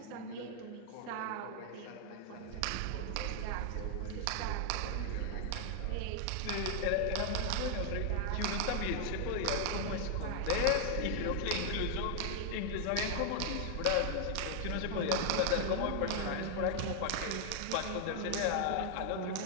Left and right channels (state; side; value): different; both; correlation 0.00